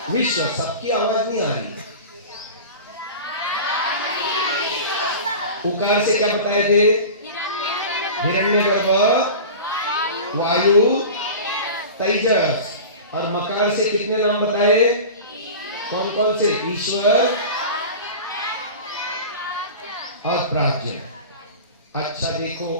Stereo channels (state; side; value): inverted; both; correlation -0.34